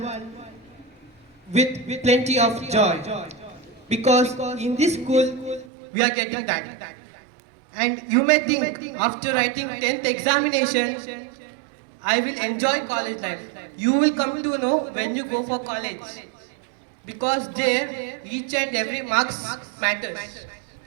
with plenty of joy. Because in this school, we are getting that. And you may think after writing 10th examination, I will enjoy college life. You will come to know when you go for college. Because there, each and every marks matters.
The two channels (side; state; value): left; drops out; at 5.7 s